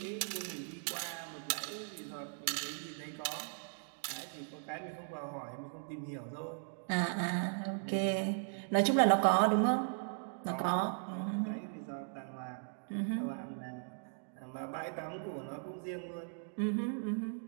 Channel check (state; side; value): silent; left; digital silence